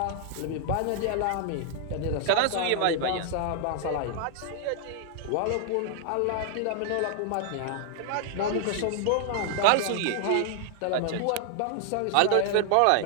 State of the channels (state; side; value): different; both; correlation 0.00